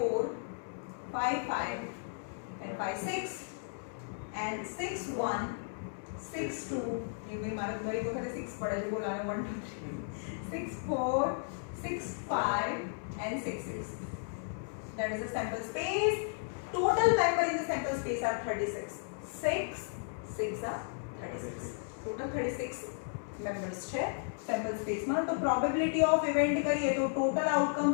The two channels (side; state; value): right; silent; digital silence